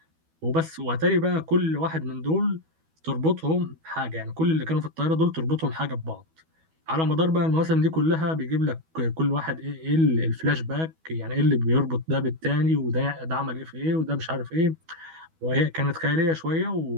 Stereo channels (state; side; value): late; left; 12 ms